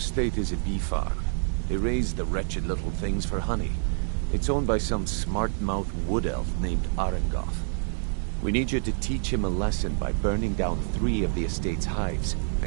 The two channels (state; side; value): silent; left; 60 dB below the other